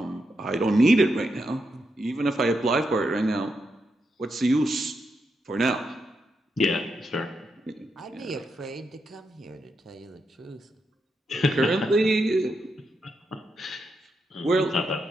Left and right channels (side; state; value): both; normal; correlation 0.83